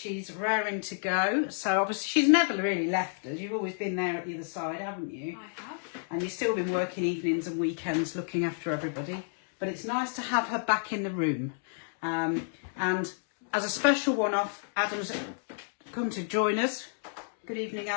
raring to go. So obviously she's never really left us. You've always been there at the other side, haven't you? I have. And you've still been working evenings and weekends looking after everybody. But it's nice to have her back in the room. And as a special one-off, Adam's come to join us. Good evening,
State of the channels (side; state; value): right; silent; digital silence